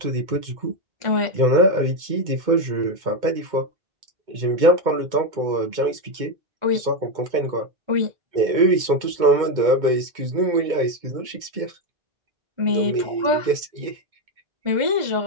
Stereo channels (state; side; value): late; left; 2.2 ms